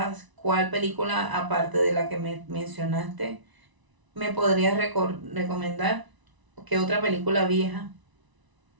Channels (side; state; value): left; late; 1.0 ms